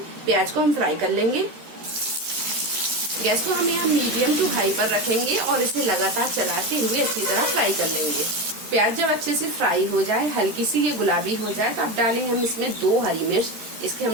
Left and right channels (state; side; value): late; left; 13 ms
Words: प्याज को हम फ्राई कर लेंगे। गैस को हम यहाँ मीडियम टू हाई पर रखेंगे और इसे लगातार चलाते हुए अच्छी तरह फ्राई कर लेंगे। प्याज जब अच्छे से फ्राई हो जाए, हल्की सी ये गुलाबी हो जाए, तो अब डालेंगे हम इसमें 2 हरी मिर्च। इसके